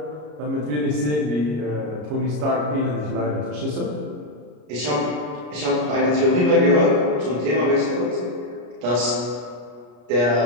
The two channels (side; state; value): left; late; 33 ms